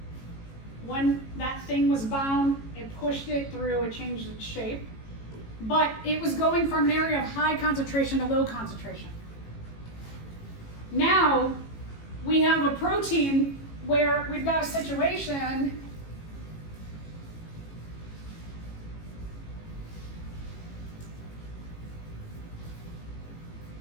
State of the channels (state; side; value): late; right; 18 ms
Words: When that thing was bound, it pushed it through, it changed its shape. But it was going from an area of high concentration to low concentration. Now, we have a protein where we've got a situation